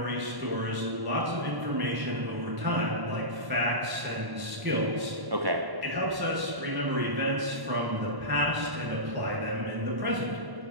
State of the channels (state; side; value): late; left; 1.1 ms